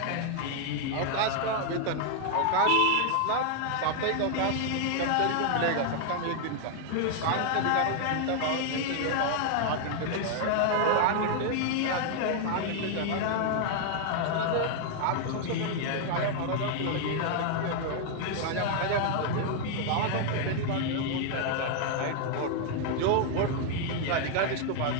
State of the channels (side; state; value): both; different; correlation 0.00